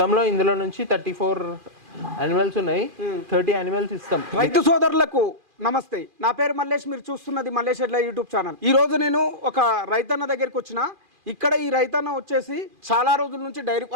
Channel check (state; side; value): late; left; 2.4 ms